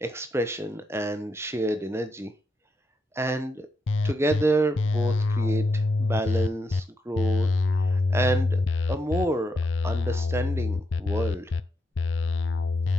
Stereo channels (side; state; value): both; normal; correlation 0.82